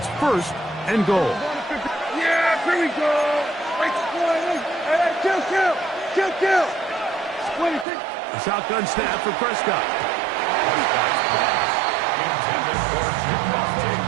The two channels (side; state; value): left; drops out; at 7.9 s